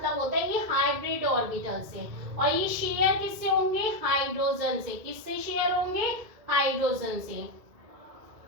होता है ये हाइब्रिड ऑर्बिटल से, और ये शेयर किससे होंगे, हाइड्रोजन से। किससे शेयर होंगे, हाइड्रोजन से।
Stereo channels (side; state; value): left; late; 2.2 ms